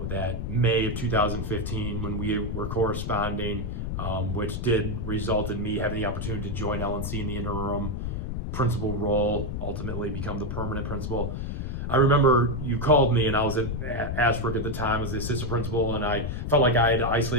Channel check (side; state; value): left; noise; rumble, 4 dB below the sound